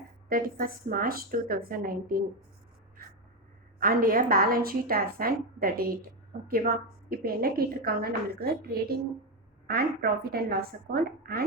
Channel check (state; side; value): normal; both; correlation 0.10